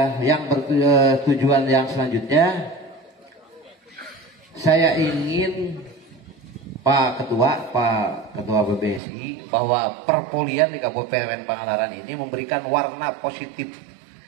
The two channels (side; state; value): left; drops out; at 9.0 s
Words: yang bertujuan yang selanjutnya, saya ingin Pak Ketua BBSI bahwa perpolian di Kabupaten Pangandaran ini memberikan warna positif